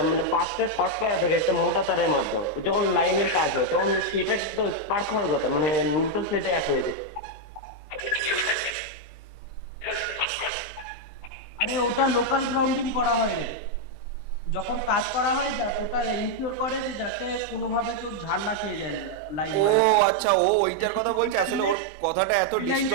মানে পাঁচটা শর্ট করা থাকে একটা মোটা তারের মাধ্যমে, যখন লাইনের কাজ হয় তখন সেটা তো স্পার্ক হওয়ার কথা, মানে নিউট্রাল সেটে এক হয়ে যায়। আরে ওটা লোকাল গ্রাউন্ডিং করা হয় রে, যখন কাজ করা হয় ওটা এনশিওর করে যে যাতে কোনোভাবে কেউ ঝাড় না খেয়ে যায় লাইন। ও আচ্ছা, ও ওইটার কথা বলছে, আসলে ওর কথাটা এত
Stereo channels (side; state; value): right; late; 20 ms